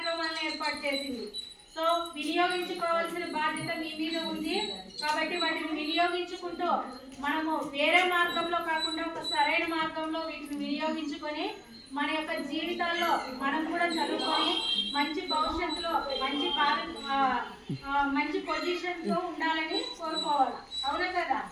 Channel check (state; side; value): identical; both; correlation 1.00